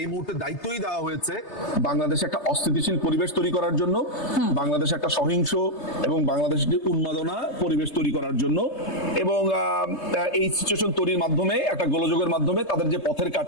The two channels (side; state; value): right; late; 3.3 ms